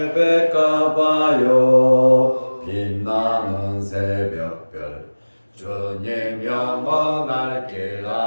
백가봐요 빛나는 새벽별 주님 영원할 길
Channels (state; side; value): inverted; both; correlation -1.00